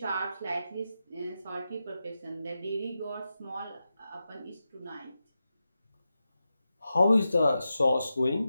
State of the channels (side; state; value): both; inverted; correlation -0.90